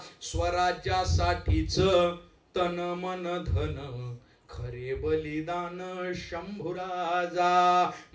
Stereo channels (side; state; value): both; identical; correlation 1.00